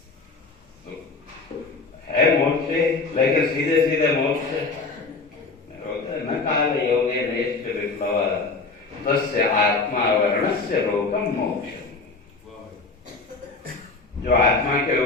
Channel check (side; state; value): right; quieter; 4.0 dB